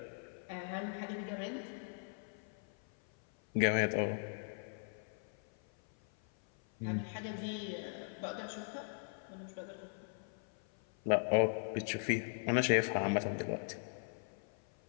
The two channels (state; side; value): silent; right; 52 dB below the other